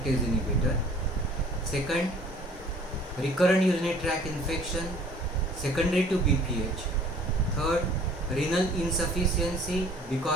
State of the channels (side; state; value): both; normal; correlation 0.53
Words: inhibitor. Second, recurrent urinary tract infection secondary to BPH. Third, renal insufficiency